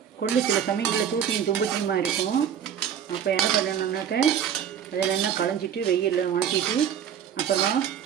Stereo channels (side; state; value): left; quieter; 8.8 dB